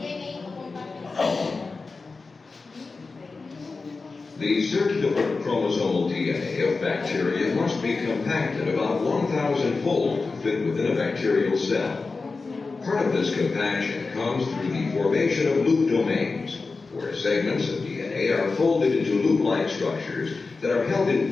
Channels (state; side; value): quieter; right; 4.1 dB